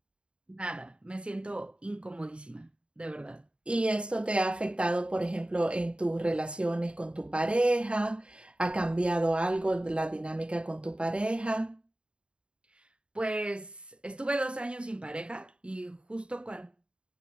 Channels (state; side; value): late; left; 0.055 ms